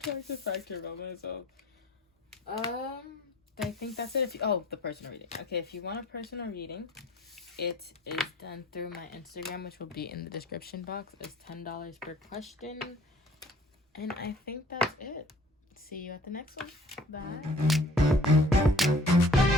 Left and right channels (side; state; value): both; normal; correlation 0.52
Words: factor about myself. I think that's it. The personal reading. Okay, if you want a personal reading, it is done through my Instagram, which will be in the description box. It's $10 per question. And I think that's it. See you at the next one. Bye.